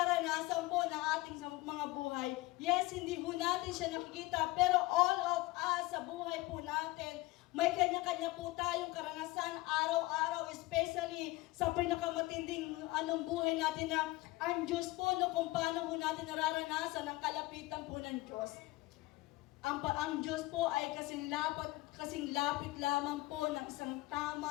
po ng ating mga buhay. Yes, hindi po natin siya nakikita, pero all of us sa buhay po natin, may kanya-kanya po tayong karanasan araw-araw, especially sa pinakamatinding buhay natin na ang Diyos po, kung paano po natin nararanasan ang kalapitan po ng Diyos. Ang Diyos po ay kasing lapit lamang po ng isang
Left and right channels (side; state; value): right; quieter; 20.1 dB